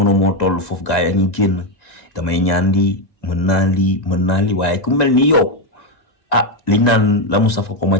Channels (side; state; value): right; late; 1.9 ms